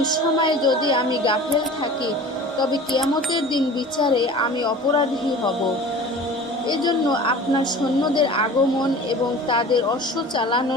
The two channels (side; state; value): both; normal; correlation 0.40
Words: যদি আমি গাফেল থাকি তবে কিয়ামতের দিন বিচারে আমি অপরাধী হব। এজন্য আপনার সৈন্যদের আগমন এবং তাদের অশ্ব